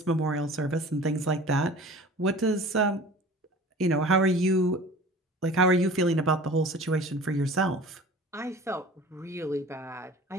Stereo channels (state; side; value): normal; both; correlation 0.42